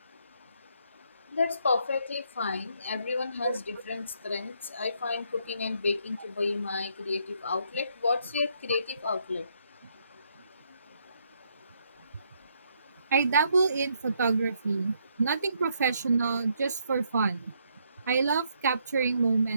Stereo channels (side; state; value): both; inverted; correlation -0.73